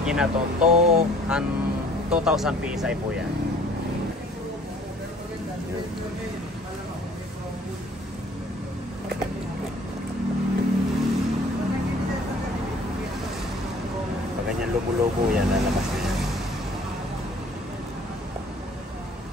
na to, 2,000 PSI po yan. Pag ganyan lubo-lubo yan, lalabas na yan.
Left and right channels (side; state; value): both; normal; correlation 0.54